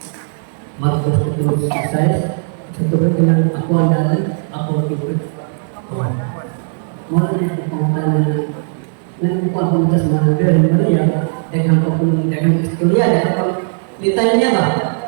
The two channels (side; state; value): left; silent; digital silence